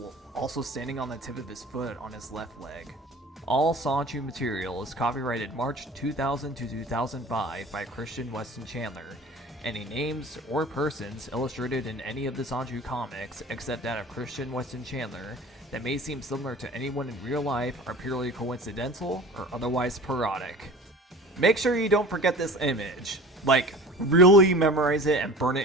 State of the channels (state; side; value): normal; both; correlation 0.40